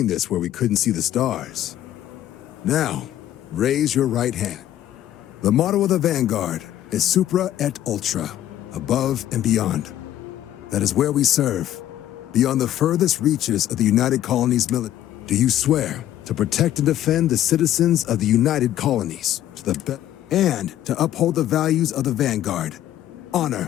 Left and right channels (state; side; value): quieter; right; 12.3 dB